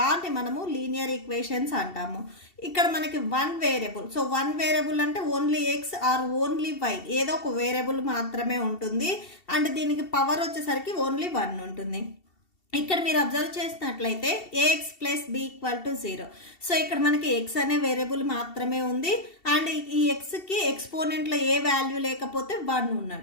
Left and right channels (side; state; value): right; late; 2.7 ms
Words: మనము లీనియర్ ఈక్వేషన్స్ అంటాము. ఇక్కడ మనకి 1 వేరియబుల్, సో 1 వేరియబుల్ అంటే only X or only Y, ఏదో ఒక వేరియబుల్ మాత్రమే ఉంటుంది. అండ్ దీనికి పవర్ వచ్చేసరికి ఓన్లీ 1 ఉంటుంది. ఇక్కడ మీరు అబ్జర్వ్ చేసినట్లయితే A X plus B equal to 0. So ఇక్కడ మనకి ఎక్స్ అనే వేరియబుల్ మాత్రమే ఉంది. అండ్ ఈ ఎక్స్కి ఎక్స్పోనెంట్లో ఏ వాల్యూ లేకపోతే 1